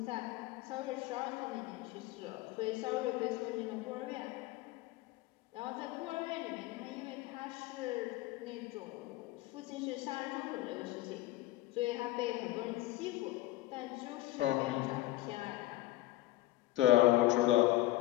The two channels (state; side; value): quieter; right; 16.8 dB